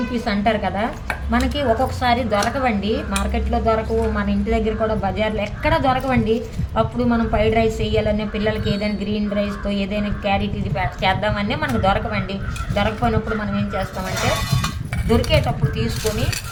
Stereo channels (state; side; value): identical; both; correlation 1.00